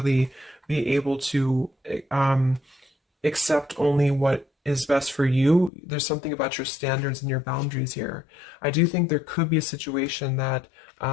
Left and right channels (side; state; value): right; drops out; at 5.7 s